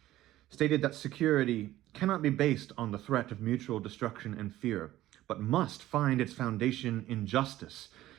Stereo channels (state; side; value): quieter; left; 14.9 dB